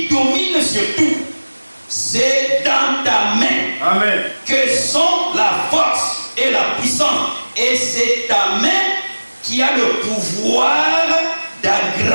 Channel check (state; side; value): inverted; both; correlation -1.00